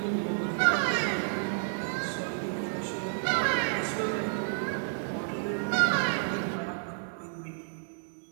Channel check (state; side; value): silent; left; digital silence